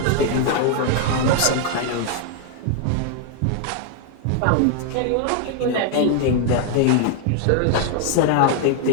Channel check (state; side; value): different; both; correlation 0.00